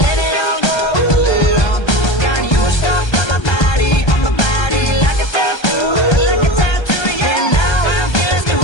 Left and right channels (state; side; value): late; right; 1.3 ms